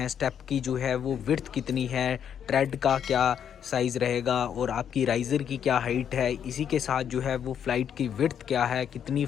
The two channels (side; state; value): right; quieter; 8.6 dB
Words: स्टेप की जो है वो विड्थ कितनी है, ट्रेड का क्या साइज़ रहेगा और आपकी राइज़र की क्या हाइट है। इसी के साथ जो है वो फ़्लाइट की विड्थ क्या है, कितनी